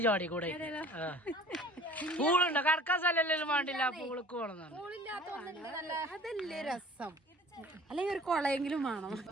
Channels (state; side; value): normal; both; correlation 0.47